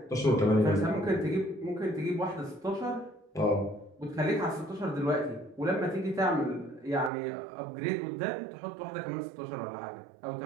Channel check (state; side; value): drops out; left; at 7.1 s